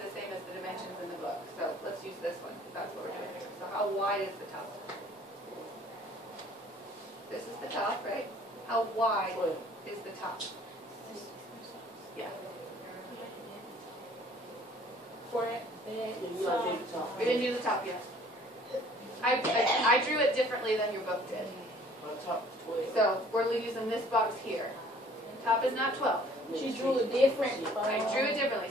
same as the dimensions in the book, so let's use this one, because that's what we're doing here. So how wide is the top? This is the top, right? How wide is the top? Yeah. We didn't do the top yet. I drew it differently than your book did. So we're using this box here. Top is not 12. She drew it different. I drew it differently.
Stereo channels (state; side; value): normal; both; correlation 0.55